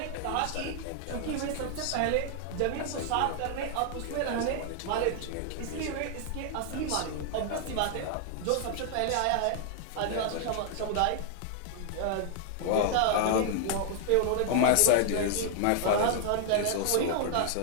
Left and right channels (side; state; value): both; different; correlation 0.00